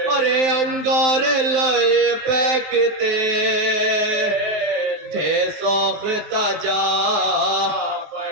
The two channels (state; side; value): late; left; 19 ms